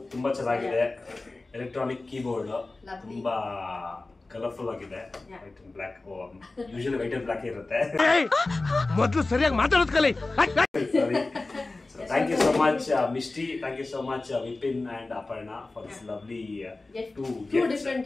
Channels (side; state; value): right; quieter; 3.3 dB